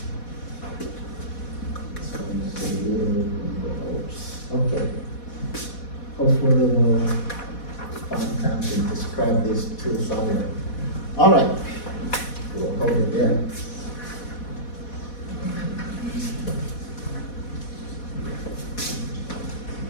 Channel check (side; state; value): right; late; 4.1 ms